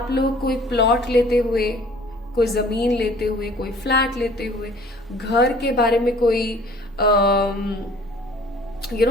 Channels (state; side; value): normal; both; correlation 0.52